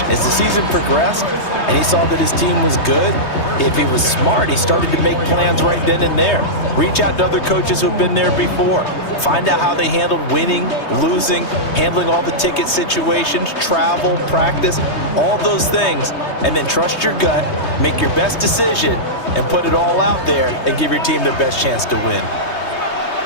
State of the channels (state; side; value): late; right; 3.2 ms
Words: As the season progressed and he saw that his team was good, if he was smart, he started to make plans right then and there. Reach out to other coaches who've been there before. Find out how they handled winning, losing, handling all the ticket situations, travel, practice, all those things. And then trust your gut, make your best decision, and put it all out there and give your team their best chance to win.